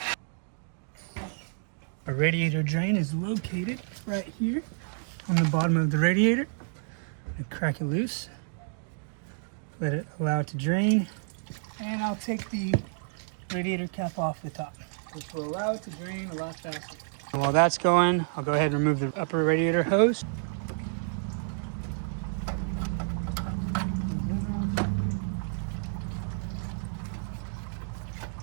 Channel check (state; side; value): silent; left; digital silence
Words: Our radiator drain is located right here on the bottom of the radiator. I'm going to crack it loose, allow it to drain, and I'll take the radiator cap off the top, which will allow it to drain a lot faster. And while that's going, I'll go ahead and remove the upper radiator hose.